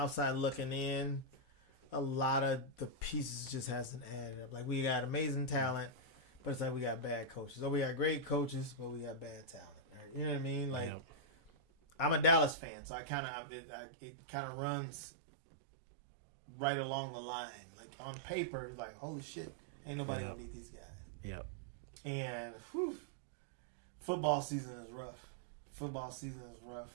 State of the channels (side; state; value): left; drops out; at 12.6 s